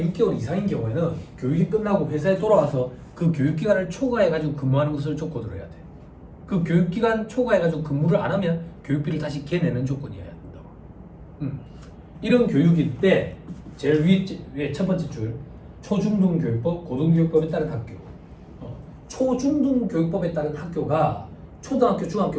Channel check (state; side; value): identical; both; correlation 1.00